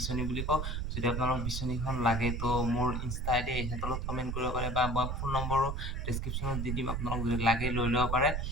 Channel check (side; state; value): right; noise; rumble, 2 dB below the sound